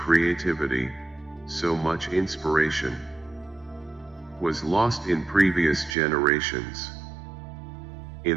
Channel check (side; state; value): left; drops out; at 6.0 s